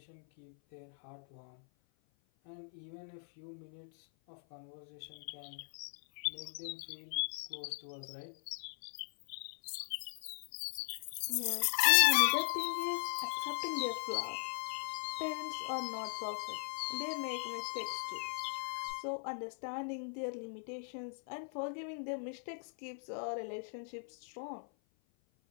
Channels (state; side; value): silent; right; 52 dB below the other